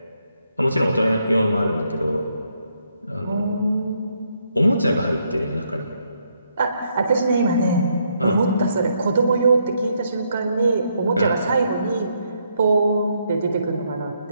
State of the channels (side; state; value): both; inverted; correlation -0.75